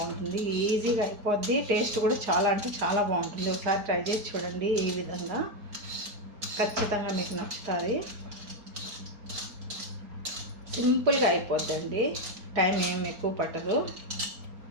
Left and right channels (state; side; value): late; left; 4.4 ms